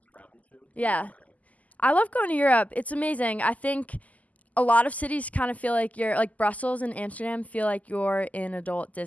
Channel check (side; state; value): right; late; 0.075 ms